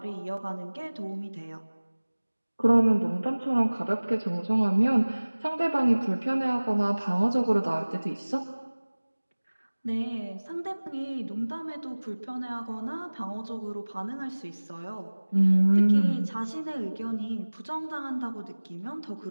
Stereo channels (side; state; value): both; inverted; correlation -1.00